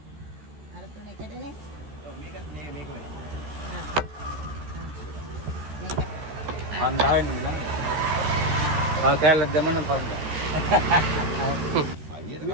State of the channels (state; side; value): late; left; 13 ms